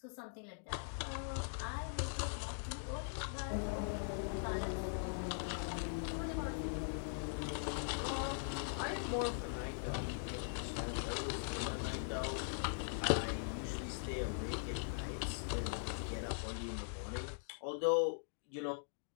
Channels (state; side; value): silent; right; digital silence